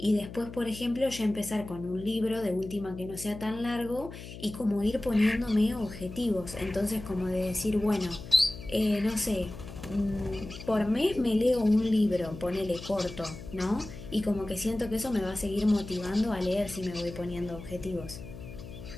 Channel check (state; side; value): noise; left; hum, 13 dB below the sound